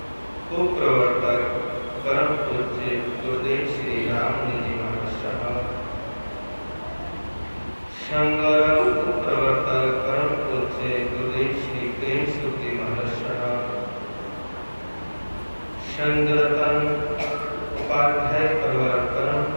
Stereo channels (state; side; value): inverted; both; correlation -1.00